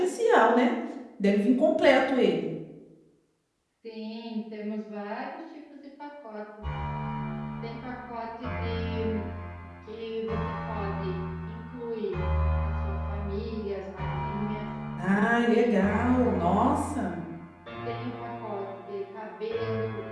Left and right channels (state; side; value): identical; both; correlation 1.00